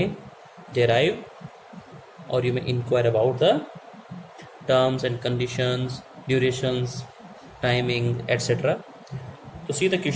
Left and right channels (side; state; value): both; identical; correlation 1.00